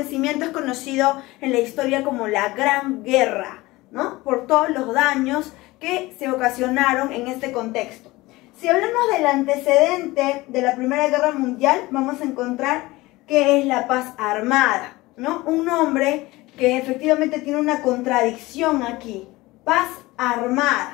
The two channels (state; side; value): quieter; right; 20.2 dB